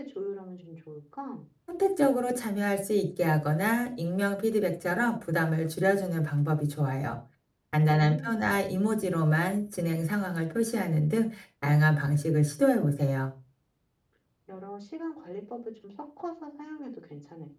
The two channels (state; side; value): identical; both; correlation 1.00